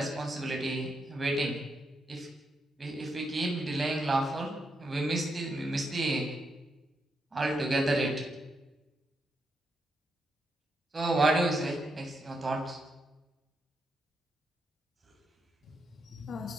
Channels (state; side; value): normal; both; correlation 0.82